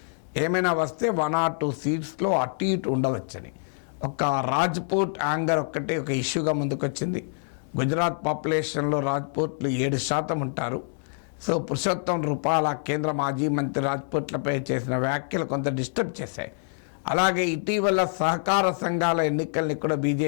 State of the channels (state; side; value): silent; right; 61 dB below the other